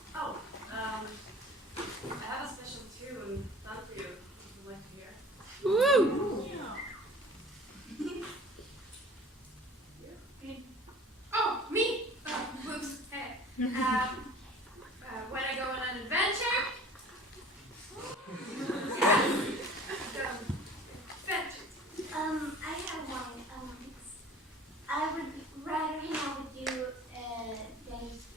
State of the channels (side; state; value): both; normal; correlation 0.45